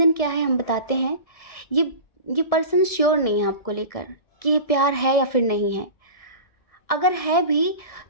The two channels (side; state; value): right; late; 1.7 ms